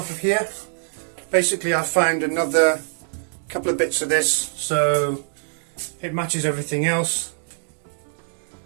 of here. Basically I found another couple of bits of this so it matches everything else.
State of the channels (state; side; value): silent; left; digital silence